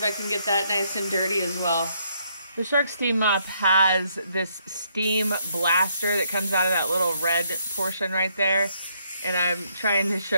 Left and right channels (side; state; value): both; inverted; correlation -0.72